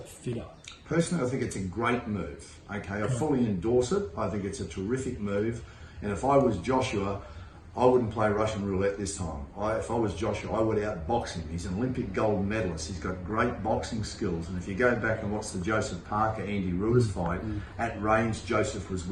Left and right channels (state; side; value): identical; both; correlation 1.00